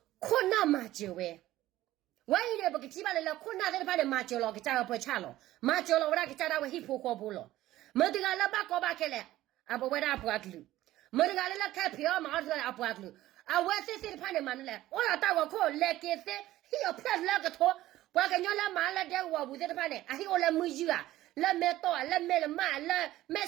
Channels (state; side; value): quieter; left; 15.3 dB